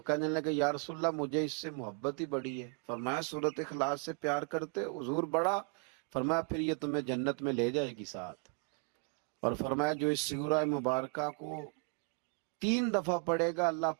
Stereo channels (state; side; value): quieter; left; 36.0 dB